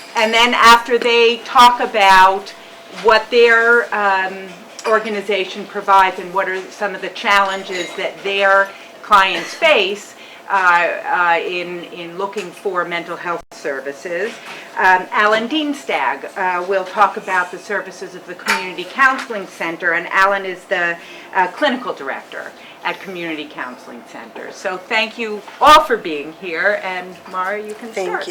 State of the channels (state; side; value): identical; both; correlation 1.00